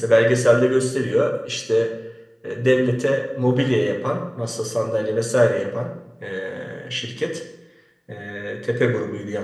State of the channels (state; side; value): identical; both; correlation 1.00